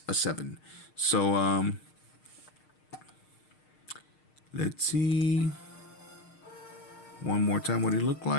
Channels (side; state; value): right; late; 6.5 ms